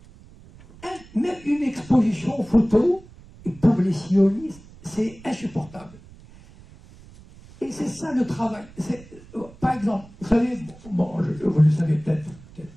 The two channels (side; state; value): right; noise; rumble, 22 dB below the sound